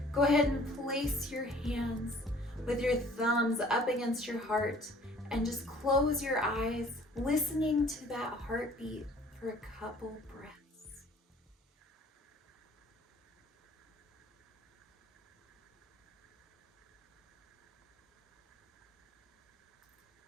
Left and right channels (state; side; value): normal; both; correlation 0.53